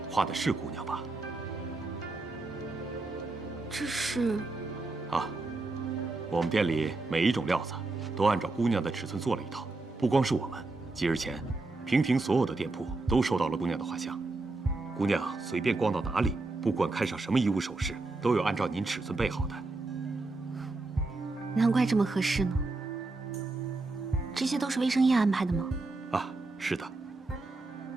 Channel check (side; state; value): left; quieter; 3.3 dB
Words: 画的是姑娘吧？这是……啊，我们店里每一种料子都按照姑娘的尺寸做了一套。不光是我们，几日前，平亭所有的店铺都收到了姑娘的画像。姑娘随便逛到哪里，不管看上什么衣物首饰，都有按照您尺寸备好的。难怪这么合适呢。这些都是魏生燕安排的吗？啊，是的。